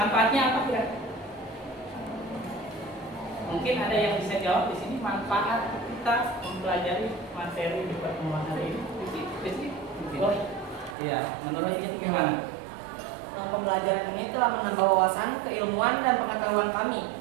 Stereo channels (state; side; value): drops out; left; at 11.0 s